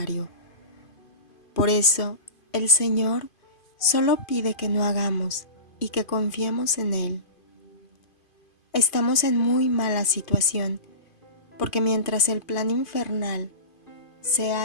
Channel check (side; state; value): right; late; 2.5 ms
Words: Por eso, el Señor solo pide que no hagamos y que confiemos en Él. Estamos en muy mala situación, porque mientras el plan infernal se